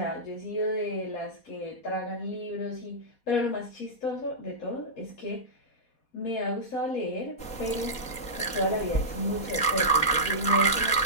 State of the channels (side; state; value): right; late; 4.2 ms